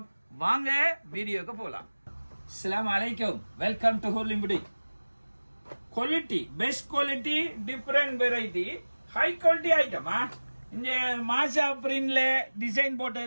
வாங்க வீடியோக்கு போலாம். அஸ்ஸலாமு அலைக்கும், welcome to holy boutique. Quality best quality different variety high quality ஐட்டமா. இந்த மாசா பிரிண்ட்ல டிசைன்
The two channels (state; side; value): inverted; both; correlation -1.00